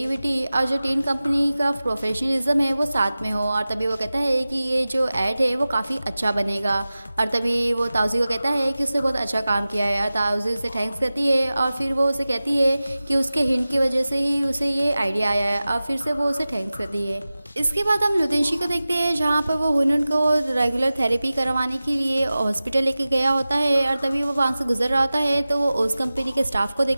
और जो टीन कंपनी का प्रोफेशनलिज्म है वो साथ में हो। और तभी वो कहता है कि ये जो ऐड है वो काफ़ी अच्छा बनेगा। और तभी वो ताउज़ी को कहता है कि उसने बहुत अच्छा काम किया है और ताउज़ी उसे थैंक्स करती है। और फिर वो उसे कहती है कि उसके हिंट की वजह से ही उसे ये आइडिया आया है और फिर से वो उसे थैंक्स करती है। इसके बाद हम लुतेंशी को देखते हैं जहाँ पर वो हुनून को रेगुलर थेरेपी करवाने के लिए हॉस्पिटल लेके गया होता है। और तभी वो वहाँ से गुजर रहा होता है तो वो उस कंपनी के स्टाफ को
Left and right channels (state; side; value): inverted; both; correlation -0.97